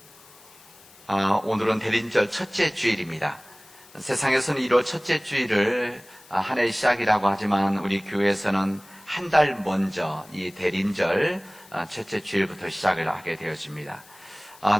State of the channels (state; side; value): noise; left; hiss, 24 dB below the sound